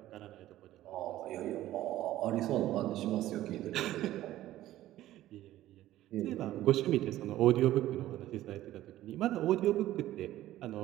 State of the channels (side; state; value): left; quieter; 14.4 dB